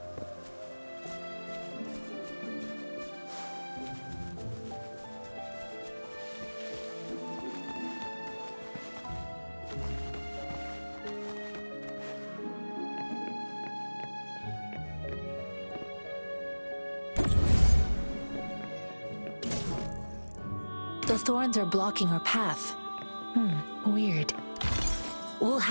The thorns are blocking our path. Weird. We'll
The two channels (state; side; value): inverted; both; correlation -1.00